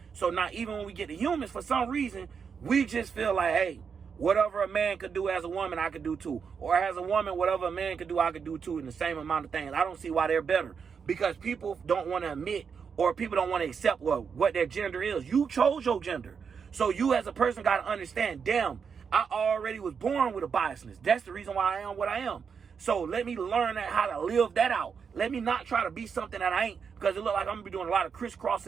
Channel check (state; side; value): quieter; left; 6.3 dB